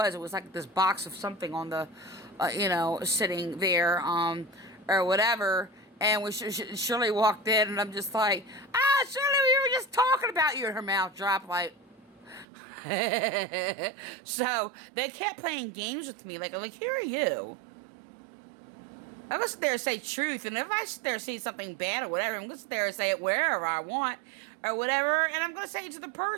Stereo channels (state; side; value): drops out; left; at 12.5 s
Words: It was like this box of something on the, sitting there, or whatever. And when Shirley walked in, and I'm just like, Shirley, we were just talking about you. And her mouth dropped like. So they kept playing games with me. Like, who are you? I'm gonna sit there and say truth, and if I sit there and say something bad or whatever, I'm gonna sit there and say it wherever I want or whatever, and I'm gonna say it to the